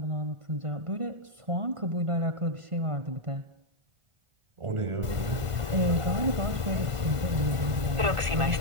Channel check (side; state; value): left; late; 1.5 ms